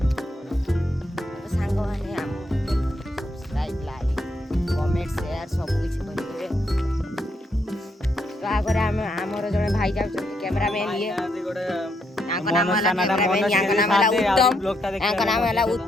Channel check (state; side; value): normal; both; correlation 0.77